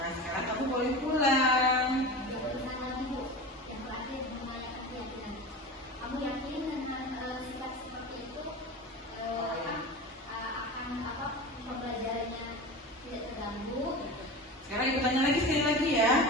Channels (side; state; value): both; normal; correlation 0.30